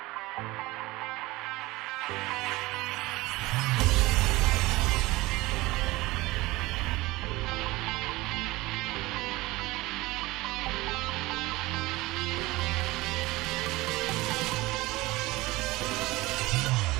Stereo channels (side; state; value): left; quieter; 20.3 dB